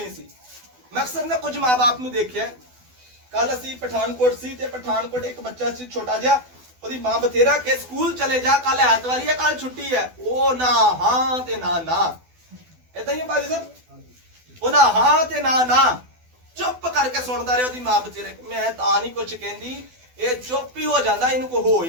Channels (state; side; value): late; left; 12 ms